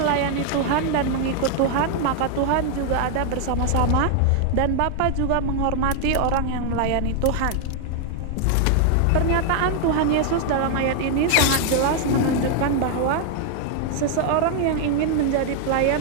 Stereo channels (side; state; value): both; different; correlation 0.00